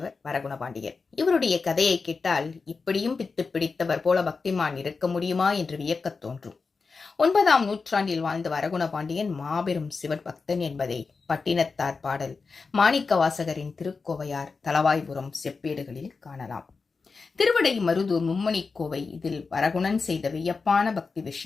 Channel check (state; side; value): quieter; right; 4.6 dB